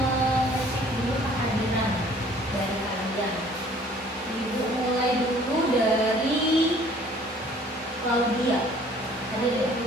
dulu kehadiran dari kalian. Ibu mulai dulu dari Claudia. Ada deh.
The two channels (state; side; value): normal; both; correlation 0.55